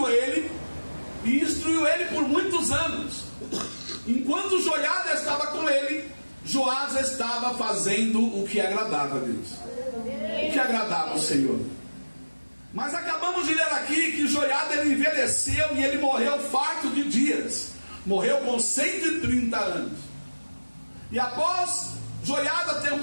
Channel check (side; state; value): both; inverted; correlation -1.00